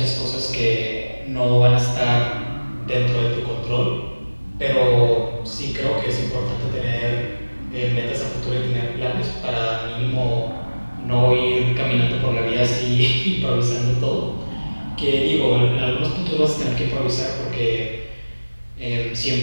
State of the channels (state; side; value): inverted; both; correlation -1.00